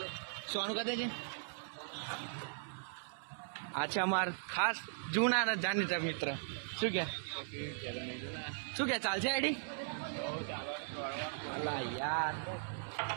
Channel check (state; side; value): silent; left; 52 dB below the other